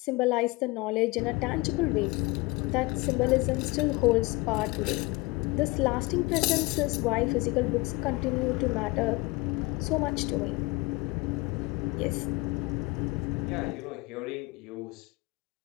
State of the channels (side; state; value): right; quieter; 23.4 dB